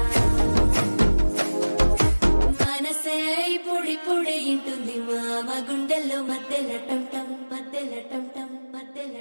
మనసే పొడి పొడి ఇంటుంది మామ గుండెల్లో మధ్యల టంటం మధ్యల టంటం మధ్యల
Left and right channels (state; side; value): inverted; both; correlation -1.00